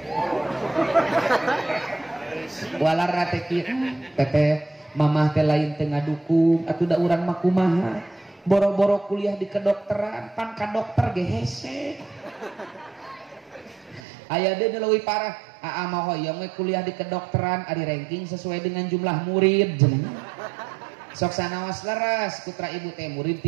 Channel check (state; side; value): drops out; left; at 14.0 s